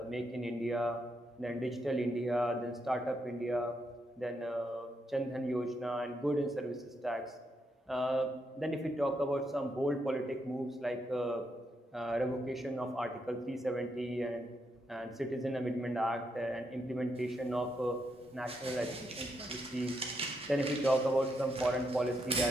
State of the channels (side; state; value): both; normal; correlation 0.80